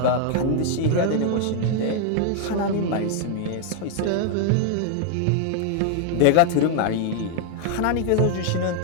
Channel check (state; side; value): different; both; correlation 0.00